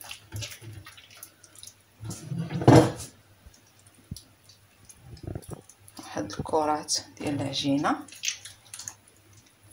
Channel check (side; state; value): both; identical; correlation 1.00